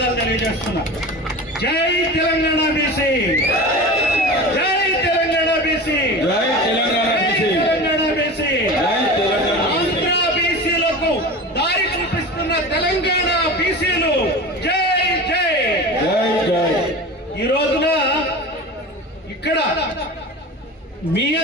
తెలియజేస్తున్నా. జై తెలంగాణ బీసీ, జై తెలంగాణ బీసీ, జై తెలంగాణ బీసీ, తెలంగాణ బీసీ. ఆంధ్ర బీసీలకు దారి చూపిస్తున్న తెలంగాణ బీసీలు జై జై జై జై. ఈ రోజున ఇక్కడ మీ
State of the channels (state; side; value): normal; both; correlation 0.32